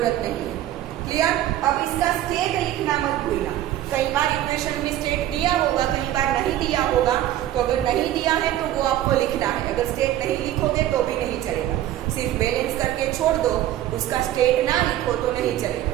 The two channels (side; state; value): left; quieter; 13.1 dB